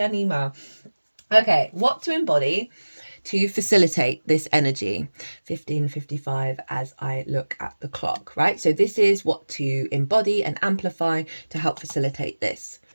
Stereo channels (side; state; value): both; inverted; correlation -1.00